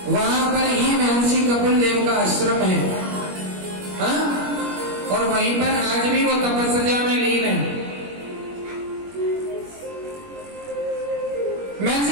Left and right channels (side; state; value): left; late; 21 ms